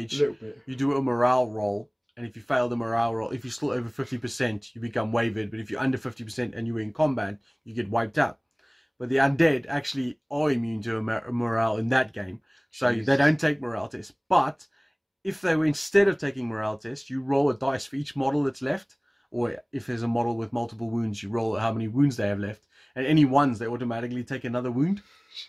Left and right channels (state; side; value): identical; both; correlation 1.00